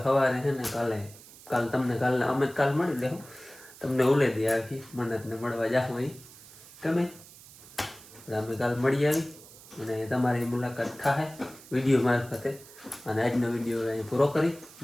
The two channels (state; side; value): noise; right; hiss, 20 dB below the sound